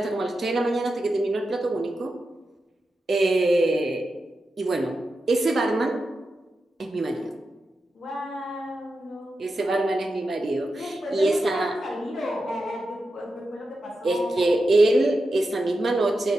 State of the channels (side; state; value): both; normal; correlation 0.89